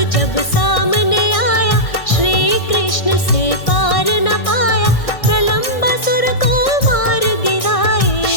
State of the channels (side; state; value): right; late; 1.6 ms